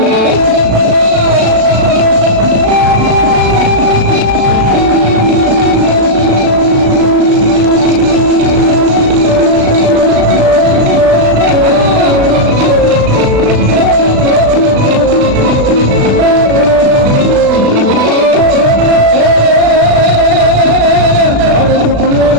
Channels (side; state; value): left; late; 36 ms